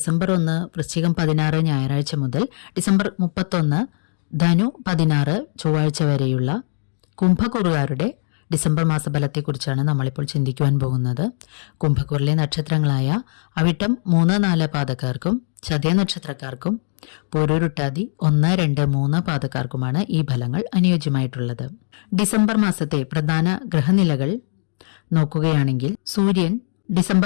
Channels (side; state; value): right; silent; digital silence